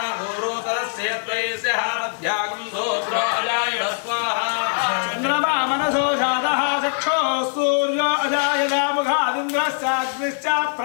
भूरोतरस्य त्वयस्य मध्यागं सूत्रो अजायत स्वाहा चन्द्रमा मनसो जातः चक्षो सूर्यो अजायत मुखादिन्द्रश्चाग्निश्च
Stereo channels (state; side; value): silent; right; digital silence